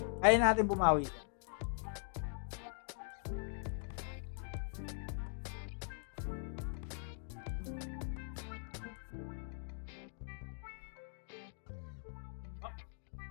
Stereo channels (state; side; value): silent; right; 50 dB below the other